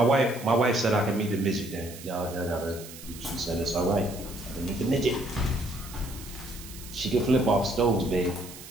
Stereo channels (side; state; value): right; noise; hiss, 15 dB below the sound